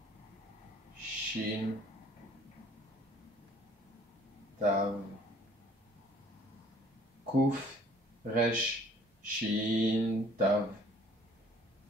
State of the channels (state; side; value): normal; both; correlation 0.56